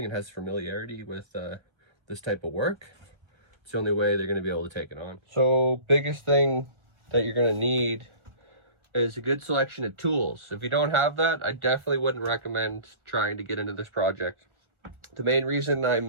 and has familiarity with this type of work, it's the only way they're going to be able to take it on. So biggest thing that you're going to need is a good selection of tools. If you don't have that, I definitely wouldn't recommend trying to get into this project. The main reason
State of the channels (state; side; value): late; left; 1.3 ms